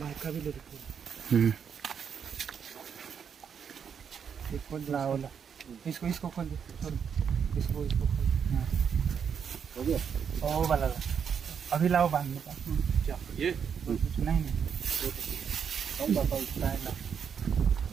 भी लेते खोल लाओ इसको इसको खोल दे इसको इसको खोल हो गया ओ वाला अभी लाओ बांधने का क्या ये नहीं कम बताओ नहीं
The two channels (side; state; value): left; quieter; 7.3 dB